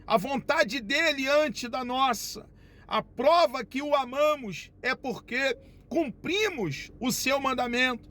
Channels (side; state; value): both; identical; correlation 1.00